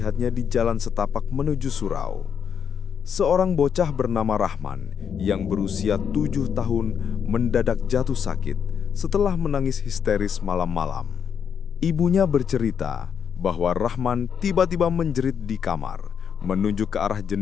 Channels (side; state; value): right; quieter; 7.5 dB